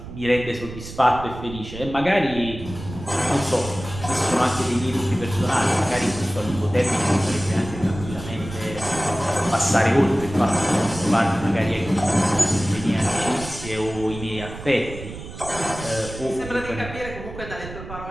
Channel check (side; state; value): right; noise; rumble, 12 dB below the sound